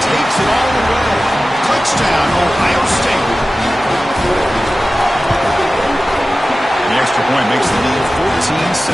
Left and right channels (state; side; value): normal; both; correlation 0.95